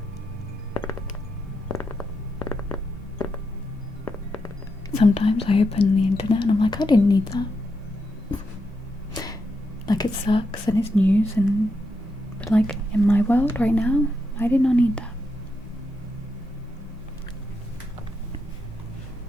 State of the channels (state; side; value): normal; both; correlation 0.83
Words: sometimes I open the internet and I'm like, I didn't need that. Like it sucks and it's news but like in my world right now, I did not need that.